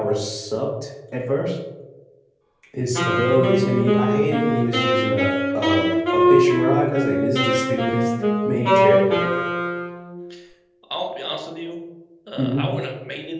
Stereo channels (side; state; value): both; identical; correlation 1.00